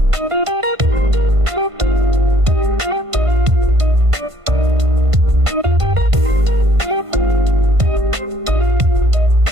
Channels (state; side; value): late; left; 1.5 ms